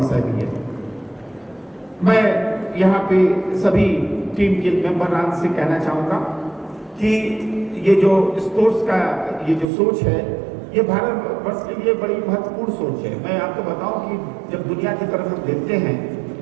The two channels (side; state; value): left; drops out; at 9.7 s